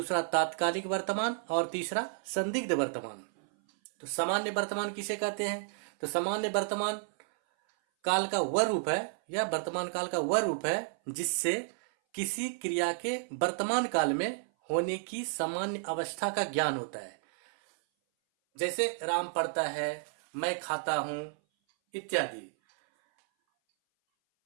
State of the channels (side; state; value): left; silent; 57 dB below the other